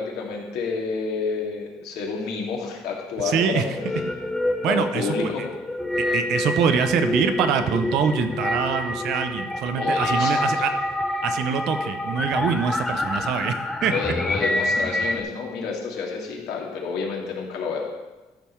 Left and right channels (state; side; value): normal; both; correlation 0.61